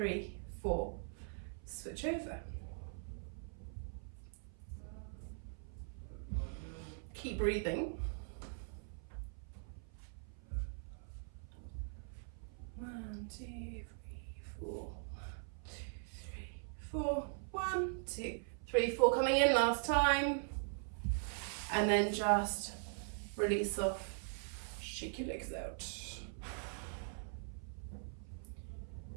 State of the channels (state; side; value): silent; left; 50 dB below the other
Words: 4. Switch over. Keep breathing. 1, 2, 3, 4. 1, 2, 3, 4. 1, 2, 3, 4. Coming in last time. And then just release off. Shake your legs out.